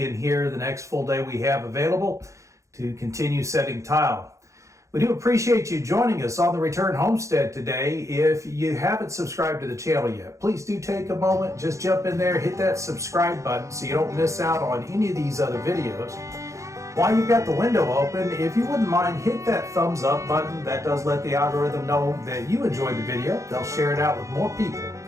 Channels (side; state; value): left; late; 0.15 ms